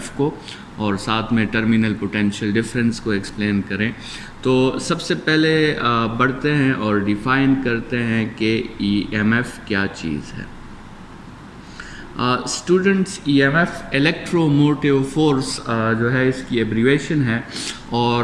को और साथ में टर्मिनल पोटेंशियल डिफरेंस को एक्सप्लेन करें। तो सबसे पहले बढ़ते हैं और डिफ़ाइन करते हैं कि ईएमएफ क्या चीज़ है। स्टूडेंट्स, ईएमएफ इलेक्ट्रोमोटिव फोर्स जो है इसकी एब्रीवेशन है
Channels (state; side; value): identical; both; correlation 1.00